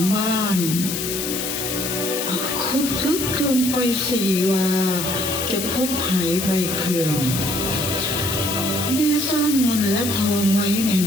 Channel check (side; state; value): left; noise; hiss, 3 dB below the sound